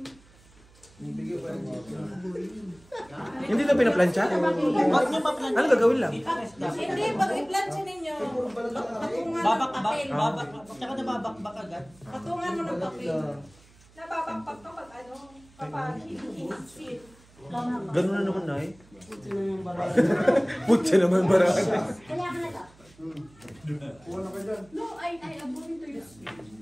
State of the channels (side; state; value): right; noise; hum, 27 dB below the sound